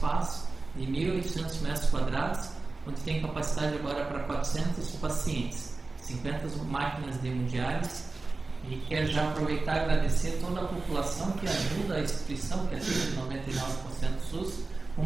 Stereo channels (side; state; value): left; quieter; 3.6 dB